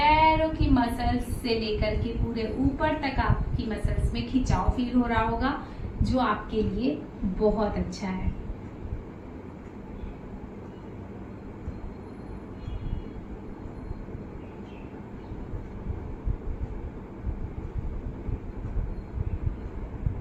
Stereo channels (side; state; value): both; identical; correlation 1.00